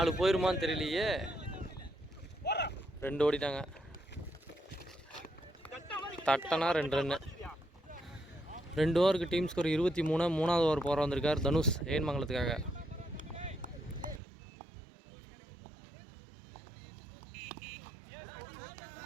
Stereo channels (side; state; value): left; drops out; at 14.2 s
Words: போயிருமான்னு தெரியலையே. 2 ஓடிட்டாங்க. தட்டனா 2 ரன்னு. 2 ஓவருக்கு டீம் ஸ்கோர் 23. 3வது ஓவர் போகிற வந்திருக்கார் தனுஷ் ஏஎன் மங்கலத்துக்காக.